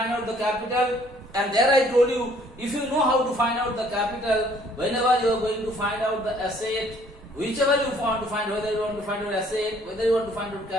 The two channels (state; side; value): normal; both; correlation 0.60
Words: out the capital. And there I told you, if you know how to find out the capital, whenever you are going to find out the asset, whichever you want to find, whether you want to find out asset, whether you want to find out